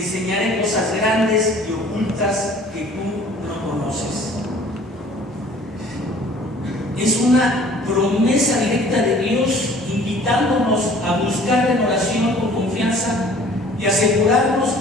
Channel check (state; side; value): normal; both; correlation 0.51